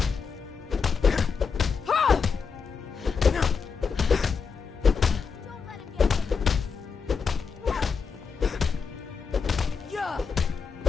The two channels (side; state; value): right; quieter; 5.6 dB